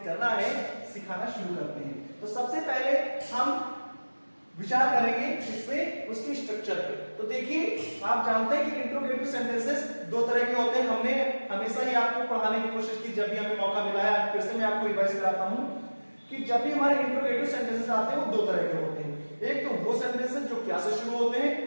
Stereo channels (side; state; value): both; inverted; correlation -1.00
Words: करना है सिखाना शुरू करते हैं। तो सबसे पहले हम विचार करेंगे इसमें उसकी स्ट्रक्चर पे। तो देखिए, आप जानते हैं कि इंट्रोगेटिव सेंटेंसेस दो तरह के होते हैं। हमने हमेशा ही आपको पढ़ाने की कोशिश की, जब भी हमें मौका मिला है। फिर से मैं आपको रिवाइज कराता हूं कि जब भी हमारे इंट्रोगेटिव सेंटेंसेस आते हैं वो दो तरह के होते हैं। एक तो वो सेंटेंसेस जो क्या से शुरू होते